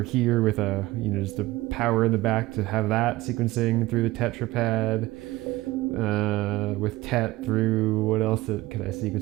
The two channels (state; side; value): quieter; left; 18.7 dB